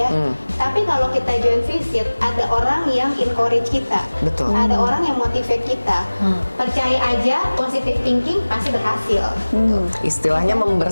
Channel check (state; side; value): inverted; both; correlation -1.00